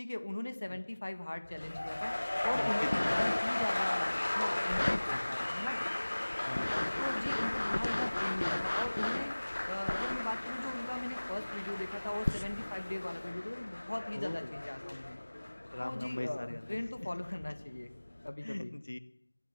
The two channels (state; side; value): inverted; both; correlation -1.00